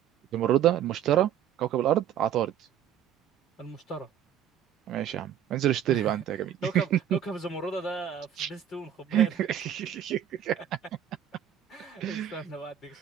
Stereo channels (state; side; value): quieter; left; 10.1 dB